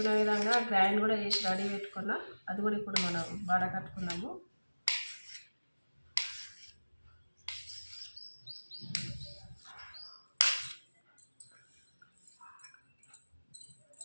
విధంగా గ్రైండ్ కూడా చేసి రెడీ పెట్టుకున్నా. అది కూడా ఇప్పుడు మనం వడకట్టుకున్నాము.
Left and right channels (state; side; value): inverted; both; correlation -1.00